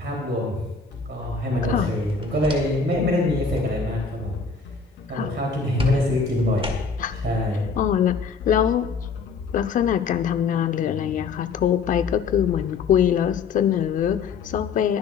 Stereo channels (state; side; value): quieter; right; 5.1 dB